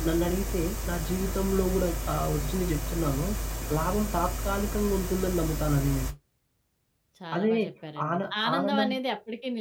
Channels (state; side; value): identical; both; correlation 1.00